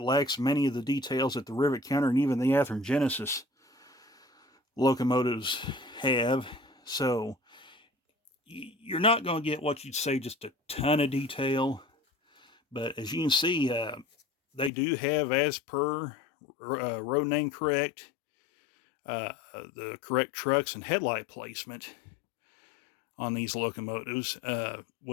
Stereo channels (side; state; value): right; drops out; at 14.7 s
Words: lacks many of the details that the rivet counter and even the Athearn Genesis locomotives have. So, you're not going to get what you'd say just a ton of detail. But as you can see, they do have, as per road name correct, the correct trucks and headlight placement on these locomotives,